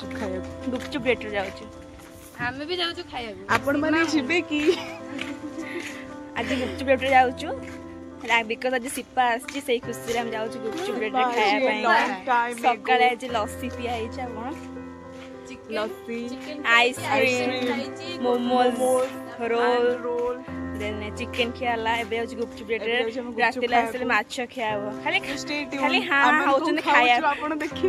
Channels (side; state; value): both; identical; correlation 1.00